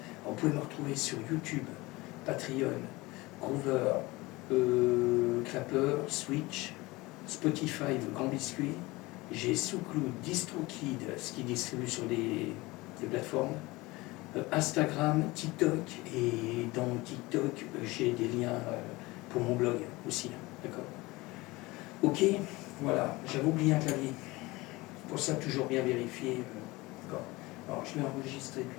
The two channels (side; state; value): right; quieter; 21.6 dB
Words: Vous pouvez me retrouver sur YouTube, Patreon, Groover, Clapper, Switch, Spotify, le Grand Biscuit. J'ai SoundCloud, DistroKid, ce qui distribue sur des plateformes. Instagram, TikTok, et dans TikTok, j'ai des liens pour mon blog aussi. D'accord? Ok, voilà, j'avais oublié un clavier. Pour ça, toujours bien vérifier. D'accord. Alors, je vais enregistrer